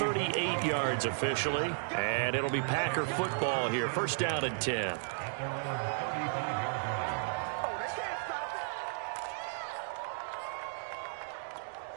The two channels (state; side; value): silent; left; digital silence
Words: yards officially. And it'll be Packer football here. First down and 10.